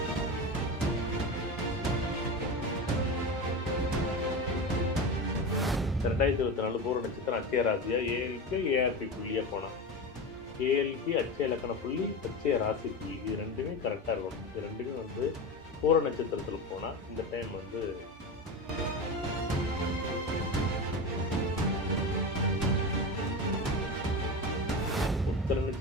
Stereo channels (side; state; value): both; normal; correlation 0.23